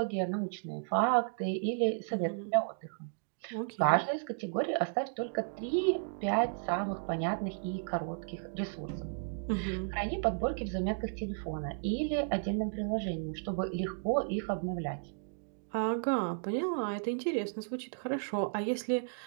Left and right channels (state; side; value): silent; left; digital silence